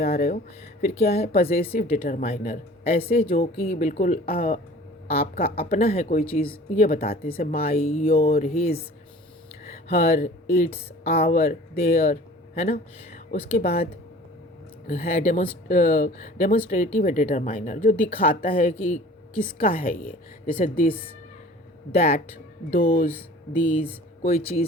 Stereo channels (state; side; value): normal; both; correlation 0.46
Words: रहे हो। फिर क्या है पजेसिव डिटरमाइनर, ऐसे जो कि बिल्कुल आपका अपना है कोई चीज़, ये बताते हैं जैसे my, your, his, her, its, our, their, है ना। उसके बाद है डेमोन्स्ट्रेटिव डिटरमाइनर, जो दिखाता है कि किसका है ये, जैसे दिस, दैट, दोज, दीज, कोई